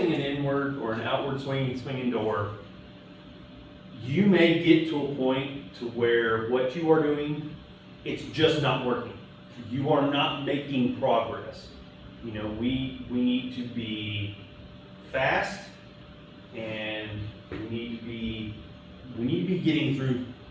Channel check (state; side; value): identical; both; correlation 1.00